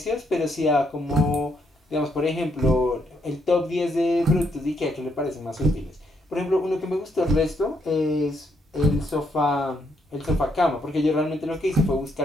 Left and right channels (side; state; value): both; normal; correlation 0.75